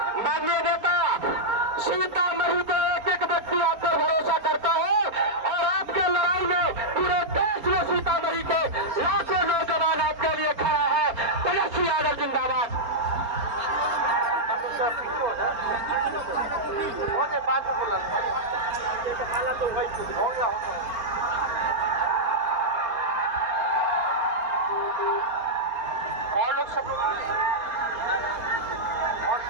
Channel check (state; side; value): late; left; 4.3 ms